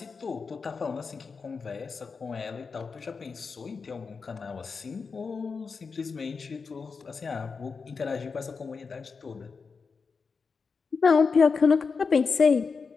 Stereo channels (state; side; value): quieter; right; 5.1 dB